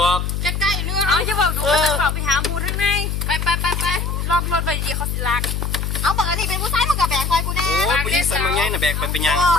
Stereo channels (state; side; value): noise; left; hum, 2 dB below the sound